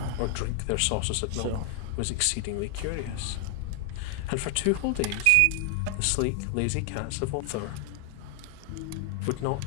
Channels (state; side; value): different; both; correlation 0.00